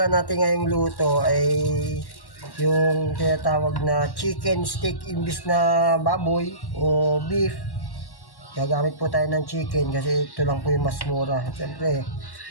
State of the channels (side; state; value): right; late; 1.1 ms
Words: natin ngayong luto ay yung tinatawag na chicken steak imbis na baboy o beef. Gagamit po tayo ng chicken kasi ito lang po yung mas mura. Siyempre,